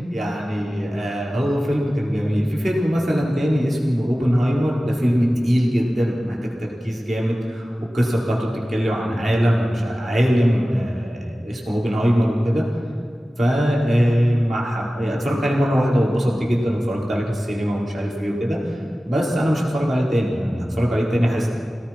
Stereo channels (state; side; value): normal; both; correlation 0.96